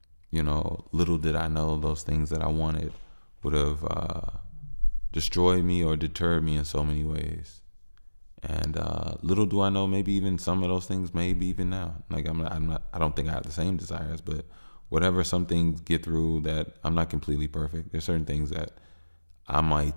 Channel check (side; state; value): both; inverted; correlation -1.00